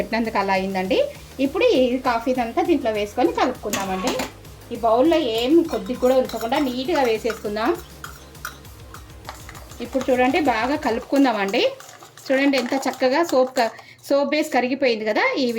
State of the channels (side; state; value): both; identical; correlation 1.00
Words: అలా అయిందండి. ఇప్పుడు ఈ కాఫీ అంతా దీంట్లో వేసుకొని కలుపుకుందామండి. ఈ బౌల్లో ఏం కొద్దిగా కూడా ఉంచకుండా నీట్గా వేసేసుకుందాం. ఇప్పుడు చూడండి బాగా కలుపుకుందామండి. చూడండి ఎంత చక్కగా సోప్ బేస్ కరిగిపోయింది కదా, ఈ